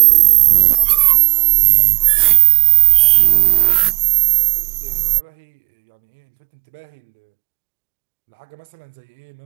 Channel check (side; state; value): left; quieter; 30.3 dB